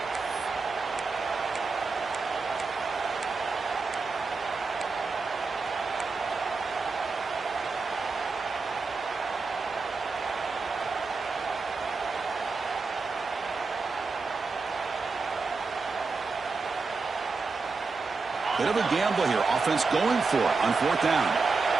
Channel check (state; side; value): quieter; left; 4.3 dB